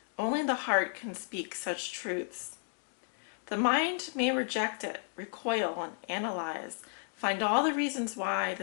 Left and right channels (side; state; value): right; silent; digital silence